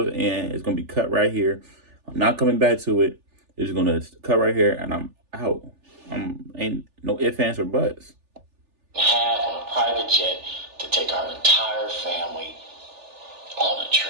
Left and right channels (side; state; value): left; late; 3.4 ms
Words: and it's going to be cut right here. I'm not coming back to it. It's going to cut right here and I'm out. Ain't no ifs, ands, or buts. Have on a private jet to take our entire family on a